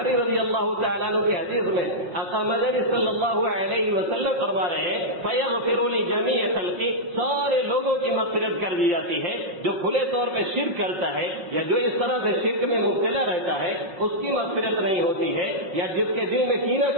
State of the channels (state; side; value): late; left; 5.4 ms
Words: رضی اللہ تعالیٰ عنہ کی حدیث میں آقا مدنی صلی اللہ علیہ وسلم فرما رہے ہیں فیغفر لجمیع خلقی, سارے لوگوں کی مغفرت کر دی جاتی ہے. جو کھلے طور پہ شرک کرتا ہے یا جو اس طرح سے شرک میں مبتلا رہتا ہے اس کی مغفرت نہیں ہوتی ہے, یا جس کے دل میں کینہ